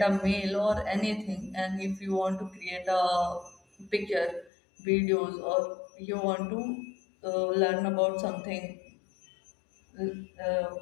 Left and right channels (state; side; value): drops out; right; at 4.5 s